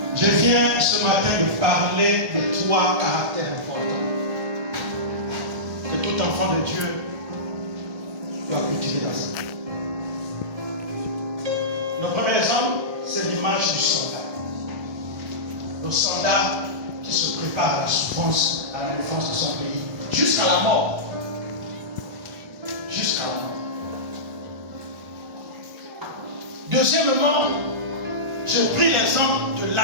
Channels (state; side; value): late; left; 1.6 ms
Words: Je viens ce matin de parler de 3 caractères importants que tout enfant de Dieu doit cultiver dans sa vie. Le premier exemple, c'est l'image du soldat. Le soldat qui se prépare à la souffrance, à la défense de son pays, jusqu'à la mort. Jusqu'à la mort. Deuxièmement, je pris l'exemple de